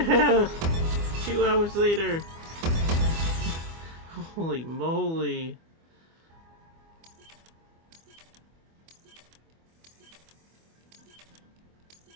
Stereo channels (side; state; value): left; late; 24 ms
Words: 2 hours later. Holy moly.